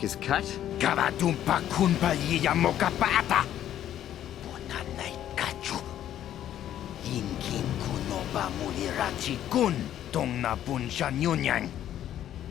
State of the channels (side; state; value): right; quieter; 11.4 dB